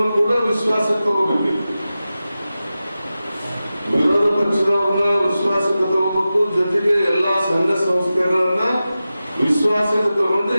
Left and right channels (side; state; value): both; inverted; correlation -0.94